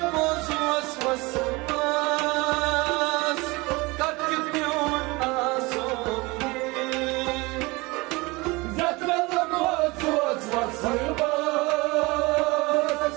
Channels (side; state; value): left; quieter; 24.0 dB